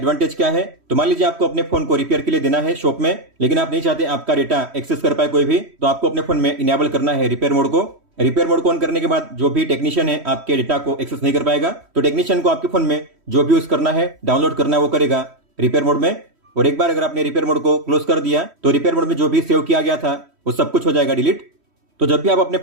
क्या है, तो मान लीजिए आपको अपने फोन को रिपेयर के लिए देना है शॉप में, लेकिन आप नहीं चाहते आपका डेटा एक्सेस कर पाए कोई भी, तो आपको अपने फोन में इनेबल करना है रिपेयर मोड को। रिपेयर मोड को ऑन करने के बाद जो भी टेक्नीशियन है आपके डेटा को एक्सेस नहीं कर पाएगा। तो टेक्नीशियन को आपके फोन में जो भी यूज करना है, डाउनलोड करना है, वो करेगा रिपेयर मोड में। और एक बार अगर आपने रिपेयर मोड को क्लोज कर दिया तो रिपेयर मोड में जो भी सेव किया गया था वो सब कुछ हो जाएगा डिलीट। तो जब भी आप अपने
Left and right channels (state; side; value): late; left; 3.1 ms